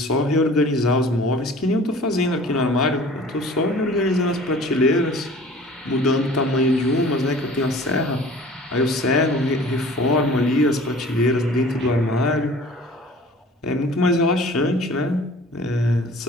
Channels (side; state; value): both; normal; correlation 0.46